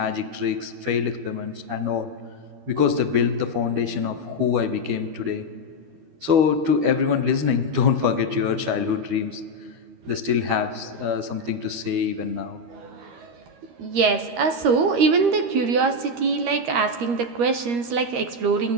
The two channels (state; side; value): late; left; 13 ms